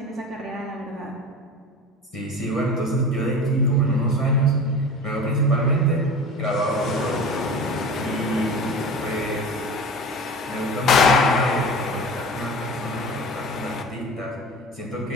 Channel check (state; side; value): normal; both; correlation 0.35